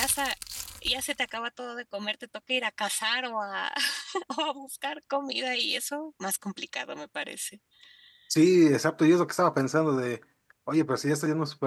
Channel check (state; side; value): identical; both; correlation 1.00